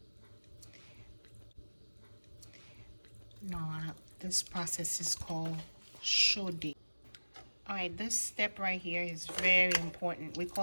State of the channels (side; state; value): both; inverted; correlation -1.00